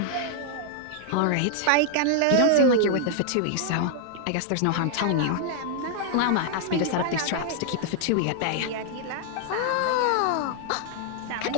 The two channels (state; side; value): different; both; correlation 0.00